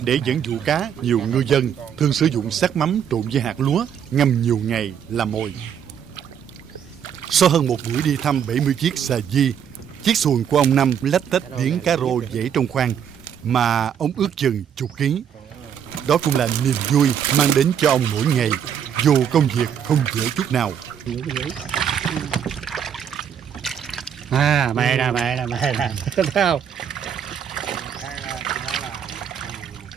Để dẫn dụ cá, nhiều ngư dân thường sử dụng xác mắm trộn với hạt lúa ngâm nhiều ngày làm mồi. Sau hơn một buổi đi thăm 70 chiếc xà di, chiếc xuồng của ông Năm lách tách điếng cá rô dễ trong khoang mà ông ước chừng chục ký. Đó cũng là niềm vui mang đến cho ông mỗi ngày, dù công việc không dễ chút nào. Mày nè, thấy không?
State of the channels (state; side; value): quieter; left; 8.4 dB